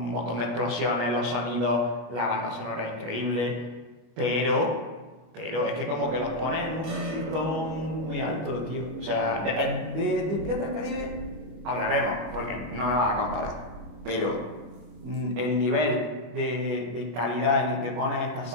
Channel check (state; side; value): late; left; 25 ms